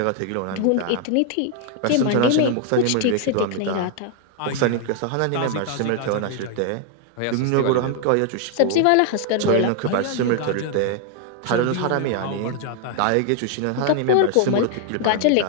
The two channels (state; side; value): different; both; correlation 0.00